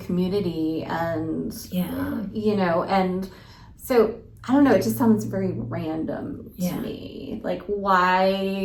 community, and and so I don't know, it just sounds very random to me. Like,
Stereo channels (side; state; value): both; identical; correlation 1.00